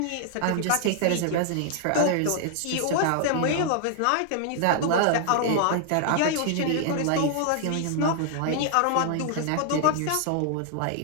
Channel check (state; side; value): different; both; correlation 0.00